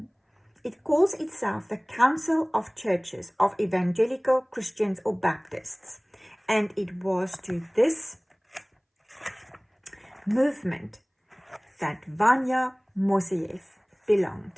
It calls itself the Council of Churches of Evangelical Christians or Baptists, and it was to this movement that VANYA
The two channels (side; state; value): both; identical; correlation 1.00